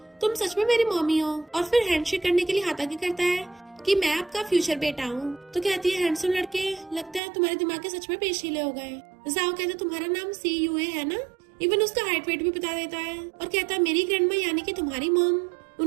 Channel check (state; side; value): drops out; left; at 7.2 s